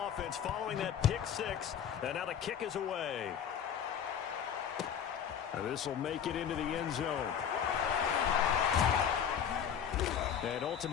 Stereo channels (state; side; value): quieter; right; 8.3 dB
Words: offense following that pick six. And now the kick is away. This will make it into the end zone. And